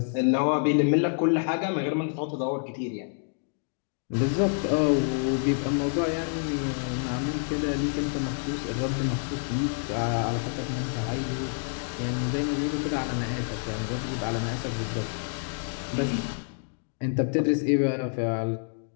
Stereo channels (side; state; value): right; silent; 59 dB below the other